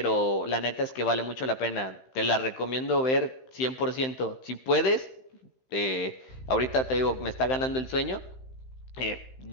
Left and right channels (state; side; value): late; right; 15 ms